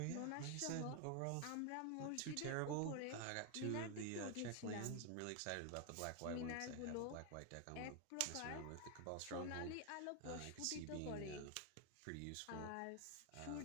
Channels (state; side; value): different; both; correlation 0.00